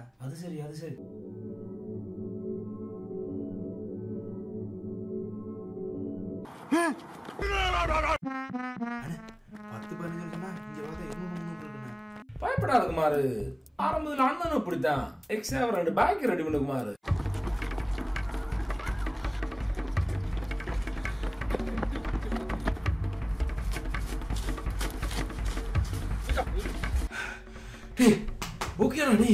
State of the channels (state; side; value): identical; both; correlation 1.00